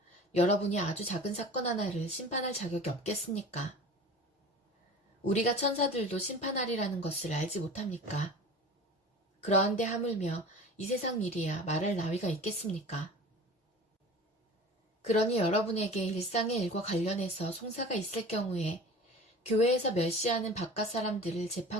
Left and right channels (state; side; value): normal; both; correlation 0.39